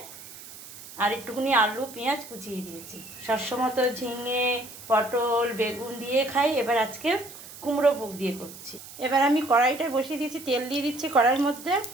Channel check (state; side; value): noise; right; hiss, 16 dB below the sound